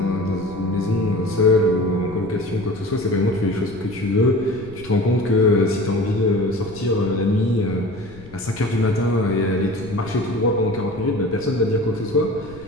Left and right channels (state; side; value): noise; left; rumble, 18 dB below the sound